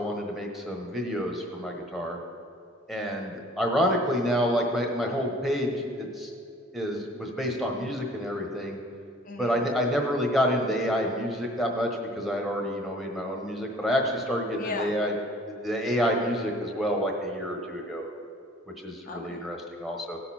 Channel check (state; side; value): normal; both; correlation 0.52